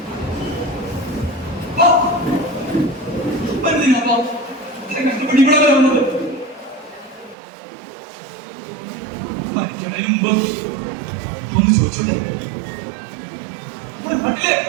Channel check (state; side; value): drops out; left; at 7.4 s